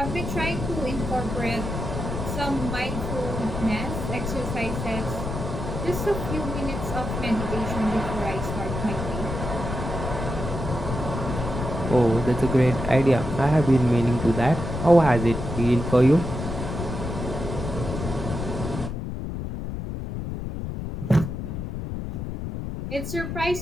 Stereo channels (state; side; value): noise; left; rumble, 5 dB below the sound